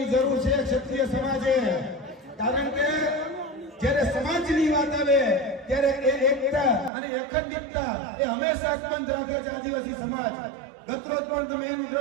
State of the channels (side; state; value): left; drops out; at 6.9 s